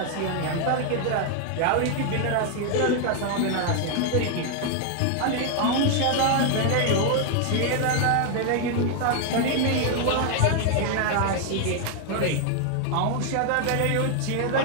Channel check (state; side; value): different; both; correlation 0.00